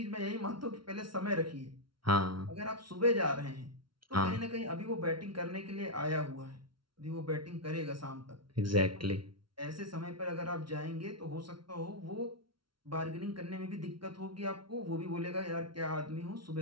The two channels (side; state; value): left; late; 0.73 ms